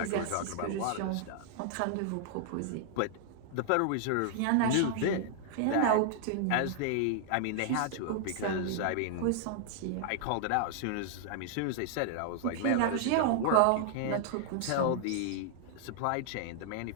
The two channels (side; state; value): both; different; correlation -0.01